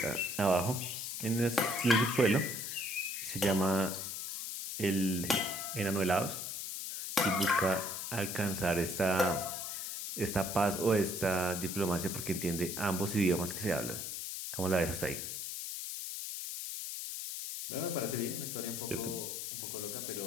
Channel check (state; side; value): noise; left; hiss, 5 dB below the sound